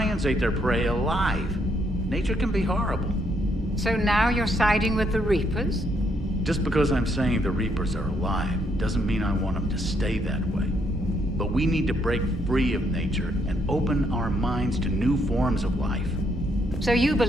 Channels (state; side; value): normal; both; correlation 0.73